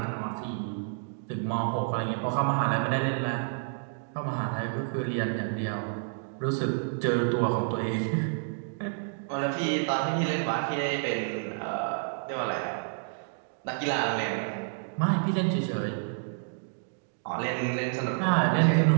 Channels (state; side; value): silent; left; digital silence